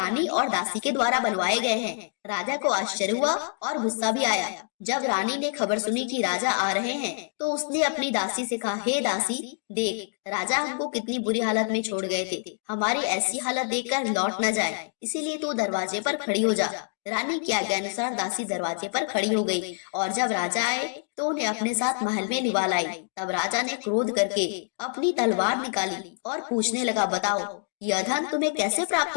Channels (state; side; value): silent; right; digital silence